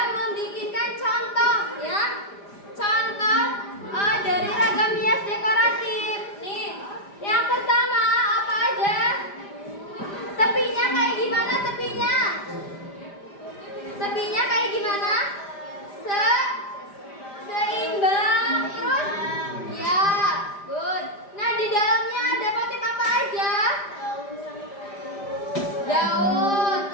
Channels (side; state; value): right; late; 5.0 ms